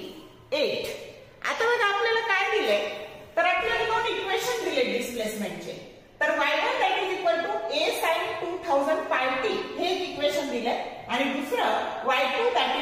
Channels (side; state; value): both; identical; correlation 1.00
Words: 8. आता बघा आपल्याला काय दिले तर आपल्याला दोन इक्वेशन दिले डिस्प्लेसमेंटचे. तर y1 that is equal to a sin 2000 pi t हे एक इक्वेशन दिले आणि दुसरं y2 that